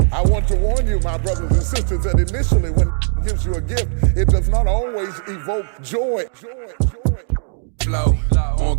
I want to warn you, my brothers and sisters, that initially when he gives you a gift, it does not always evoke joy. Flow,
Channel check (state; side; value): silent; left; 65 dB below the other